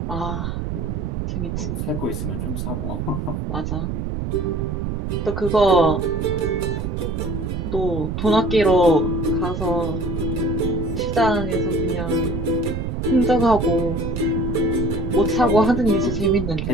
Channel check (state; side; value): noise; right; rumble, 3 dB below the sound